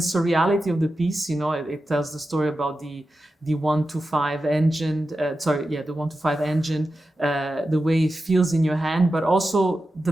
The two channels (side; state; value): both; normal; correlation 0.92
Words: of the piece. It tells the story about the 125 engine, the 125 engine, the way it feels in your hand, but also